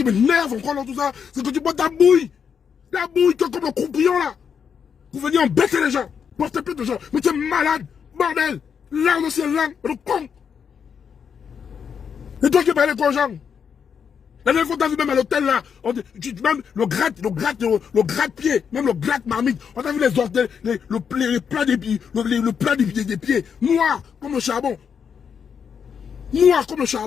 m'énerve encore dans tout ça, c'est que tu bois ta bouille. Ta bouille, comme le croupion là. Vous venez embêter les gens. Porter plainte aux gens. Mais tu es malade. Bordel. L'âme aussi est l'âme. Le con. Et toi qui parlais aux gens. La dernière fois, t'as vu même à l'hôtel là, même le gratte-pied, même le gratte-marmite, on a vu les orteils, le plat des pieds, le plat des pieds, noir comme le charbon. Noir comme le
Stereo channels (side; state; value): right; quieter; 7.0 dB